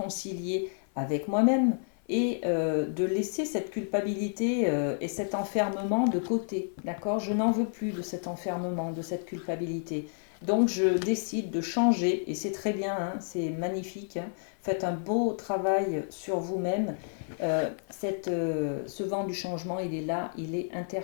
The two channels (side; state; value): right; silent; 58 dB below the other